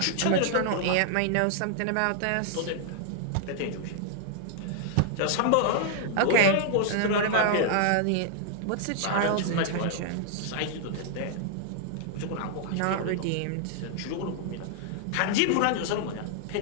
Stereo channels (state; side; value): different; both; correlation 0.00